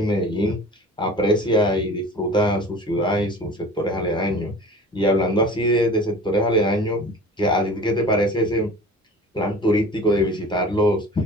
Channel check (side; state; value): both; normal; correlation 0.41